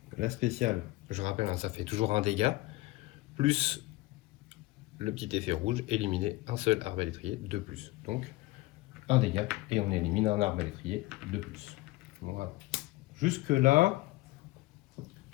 la spéciale, je rappelle, hein, ça fait toujours un dégât, plus le petit effet rouge, éliminer un seul arbalétrier de plus. Donc un dégât et on élimine un arbalétrier de plus. Voilà. Jusque là,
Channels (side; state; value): right; quieter; 19.4 dB